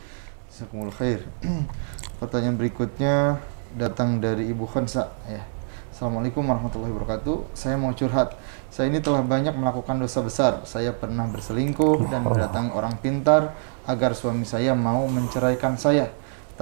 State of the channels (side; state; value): left; silent; digital silence